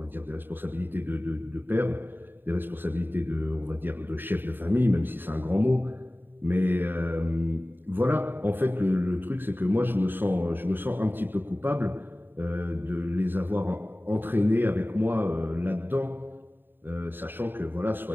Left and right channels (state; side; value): late; left; 0.095 ms